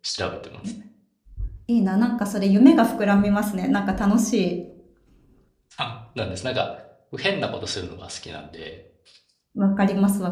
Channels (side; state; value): both; identical; correlation 1.00